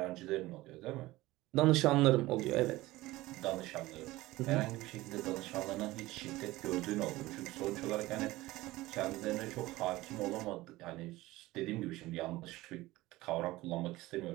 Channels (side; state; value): left; quieter; 18.5 dB